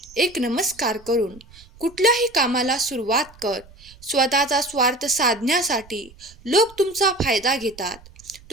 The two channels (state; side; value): noise; right; rumble, 24 dB below the sound